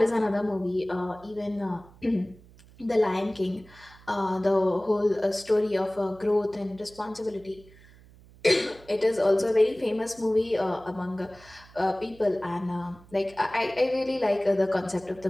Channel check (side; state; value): right; noise; hum, 24 dB below the sound